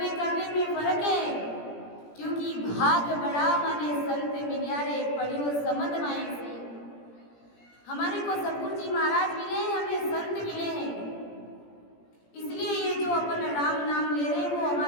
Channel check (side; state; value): right; late; 17 ms